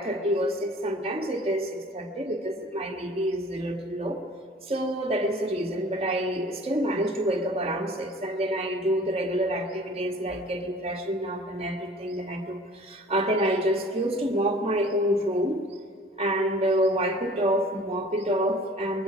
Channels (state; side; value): normal; both; correlation 0.48